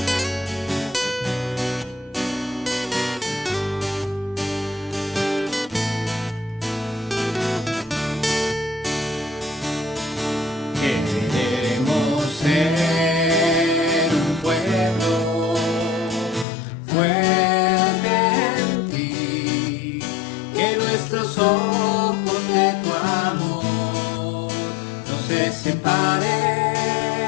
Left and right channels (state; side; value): drops out; right; at 16.4 s